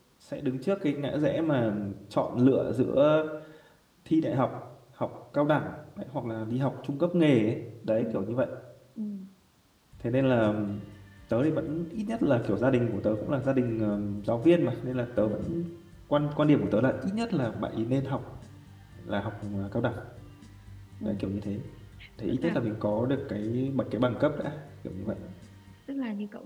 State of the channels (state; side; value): identical; both; correlation 1.00